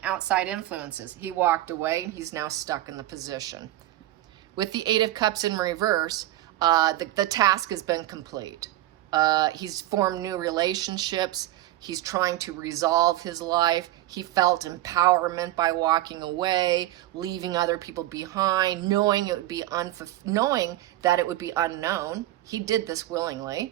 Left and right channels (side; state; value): left; quieter; 15.2 dB